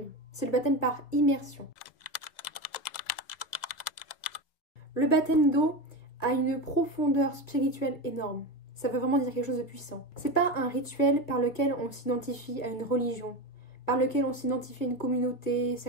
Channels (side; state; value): right; late; 2.0 ms